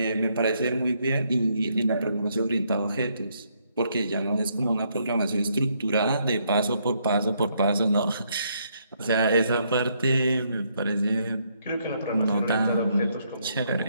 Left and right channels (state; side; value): inverted; both; correlation -0.73